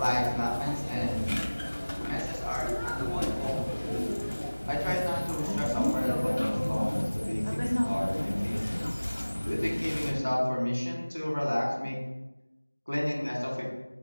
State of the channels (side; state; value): both; inverted; correlation -1.00